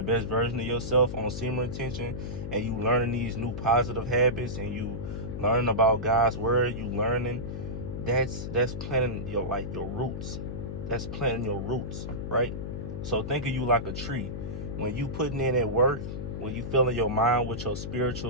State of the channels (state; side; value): noise; left; hum, 6 dB below the sound